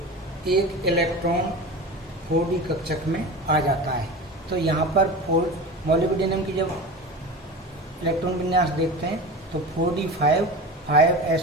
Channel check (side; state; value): both; normal; correlation 0.30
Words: इलेक्ट्रॉन 4d कक्षक में आ जाता है। तो यहाँ पर मोलिब्डेनम की जब इलेक्ट्रॉन विन्यास देखते हैं तो 4d5